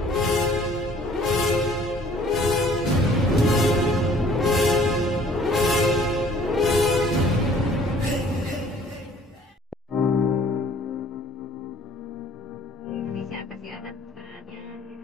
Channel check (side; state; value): both; normal; correlation 0.55